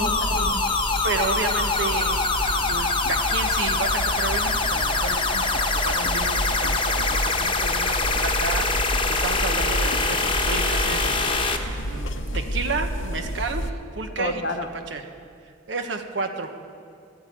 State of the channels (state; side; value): normal; both; correlation 0.05